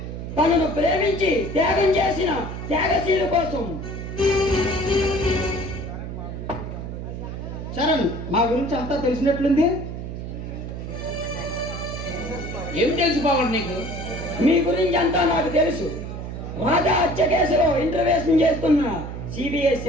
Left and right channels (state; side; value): noise; right; hum, 7 dB below the sound